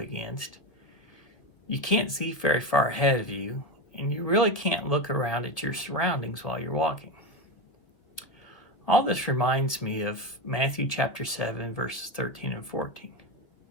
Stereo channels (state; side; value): late; right; 1.9 ms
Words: You can't see very far ahead of you, and you really can't look around at your surroundings while you're walking. All this reminds me of Matthew chapter 7, verses 13 and 14.